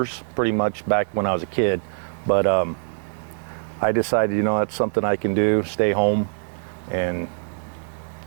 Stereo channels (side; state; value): left; silent; digital silence